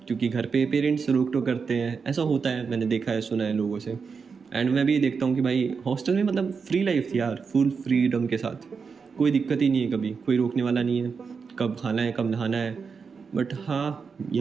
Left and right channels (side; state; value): left; quieter; 5.5 dB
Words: क्योंकि घर पे पेरेंट्स रोक टोक करते हैं, ऐसा होता है, मैंने देखा है, सुना है लोगों से। एंड मैं भी ये देखता हूँ कि भाई हॉस्टल में मतलब फ्री लाइफ थी यार, फुल फ्रीडम के साथ, कोई दिक्कत ही नहीं है, कभी कोई रोकने वाला नहीं है, कब खाना है कब नहाना है। बट हाँ